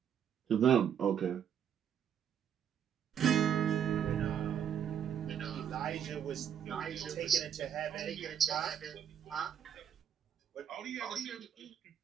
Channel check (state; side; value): quieter; left; 8.8 dB